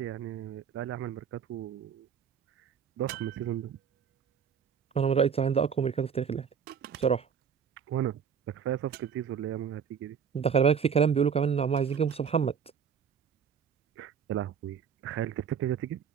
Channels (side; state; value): left; quieter; 7.1 dB